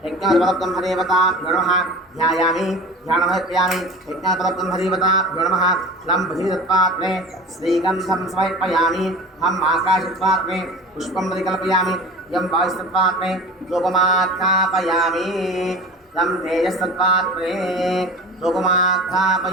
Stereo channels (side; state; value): both; normal; correlation 0.36